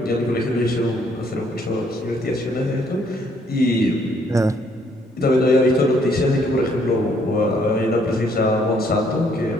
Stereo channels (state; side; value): normal; both; correlation 0.67